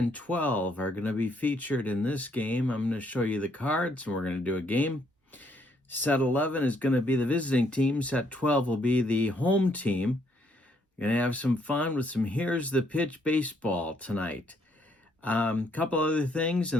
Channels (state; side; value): normal; both; correlation 0.70